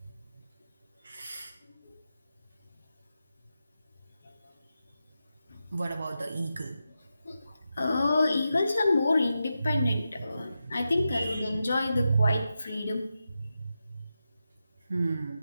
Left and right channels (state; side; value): inverted; both; correlation -0.89